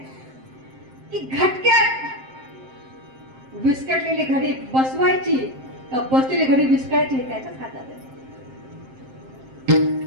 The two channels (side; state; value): left; late; 7.6 ms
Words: की घटक्यात विस्कटलेली घडी बसवायची का बसलेली घडी विस्कटायची हे त्याच्याच हातात आहे.